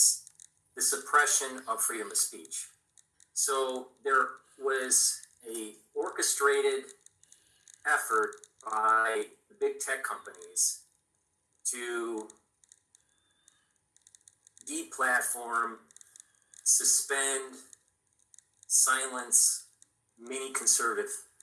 the suppression of freedom of speech. So there was a orchestrated effort by the big tech companies to deplatform, suspend, silence many conservative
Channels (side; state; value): both; identical; correlation 1.00